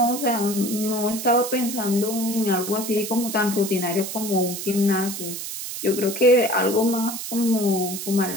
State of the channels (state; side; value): noise; right; hiss, 7 dB below the sound